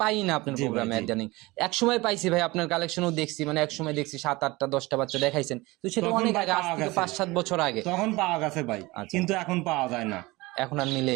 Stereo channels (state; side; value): quieter; left; 21.8 dB